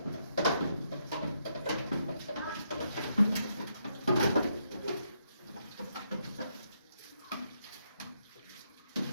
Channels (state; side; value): inverted; both; correlation -0.78